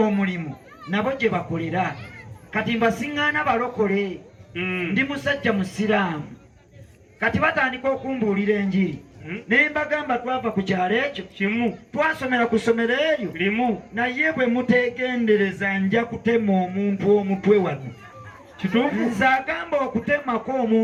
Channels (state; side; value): identical; both; correlation 1.00